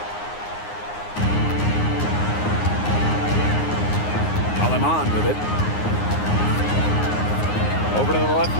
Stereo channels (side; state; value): right; late; 9.6 ms